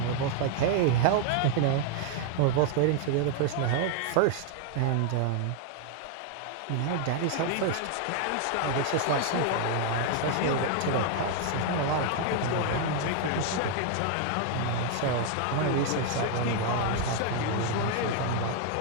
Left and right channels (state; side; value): different; both; correlation 0.00